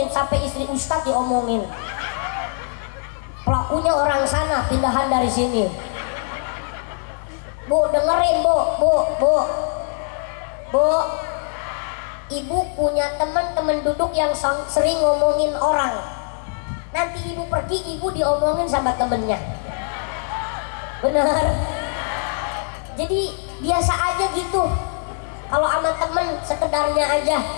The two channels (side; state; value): right; silent; 64 dB below the other